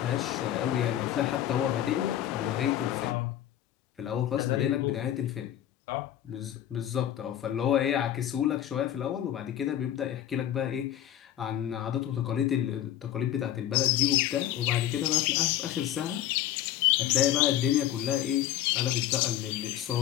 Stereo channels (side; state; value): right; quieter; 11.9 dB